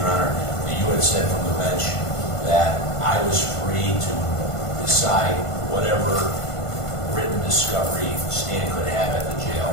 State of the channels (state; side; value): late; right; 1.5 ms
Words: Honor, that you had said from the bench that I was free to decide whatever written discovery Stan could have at the jail.